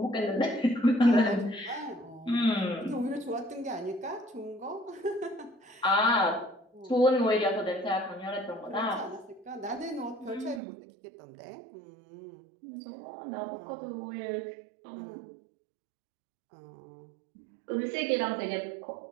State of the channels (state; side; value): drops out; left; at 10.6 s